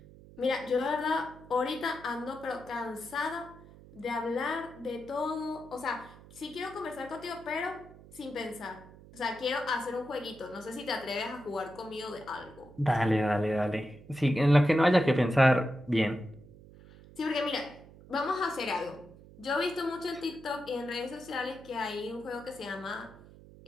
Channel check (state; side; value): noise; right; hum, 20 dB below the sound